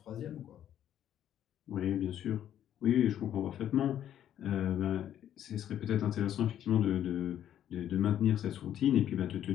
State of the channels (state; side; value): quieter; right; 10.7 dB